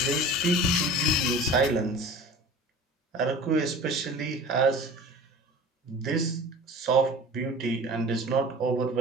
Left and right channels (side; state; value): both; normal; correlation 0.40